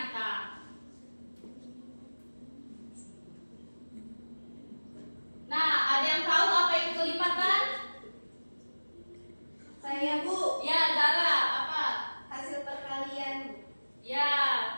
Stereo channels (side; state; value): both; inverted; correlation -1.00